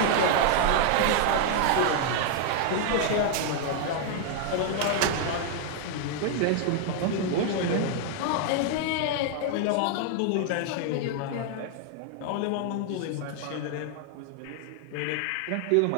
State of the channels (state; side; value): different; both; correlation 0.00